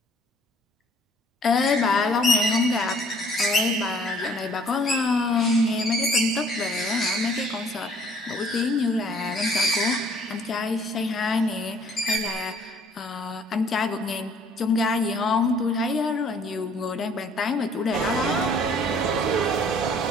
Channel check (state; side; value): normal; both; correlation 0.58